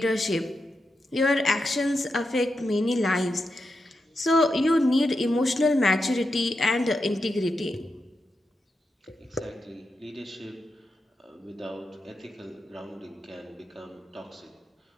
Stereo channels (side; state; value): both; normal; correlation 0.87